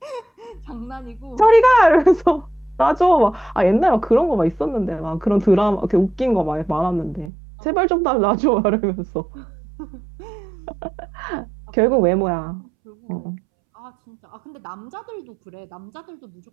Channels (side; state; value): left; drops out; at 7.3 s